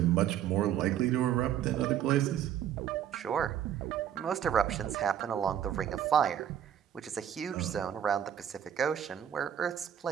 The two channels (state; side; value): quieter; left; 9.9 dB